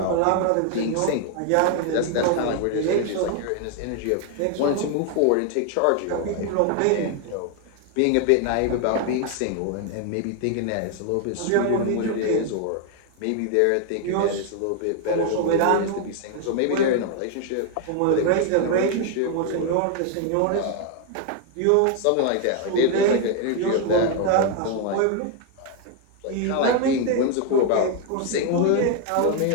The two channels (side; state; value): both; different; correlation 0.00